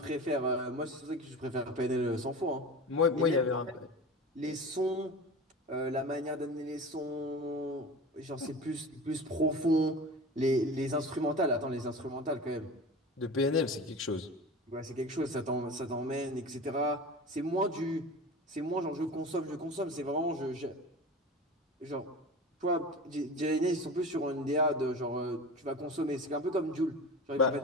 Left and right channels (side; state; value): both; normal; correlation 0.33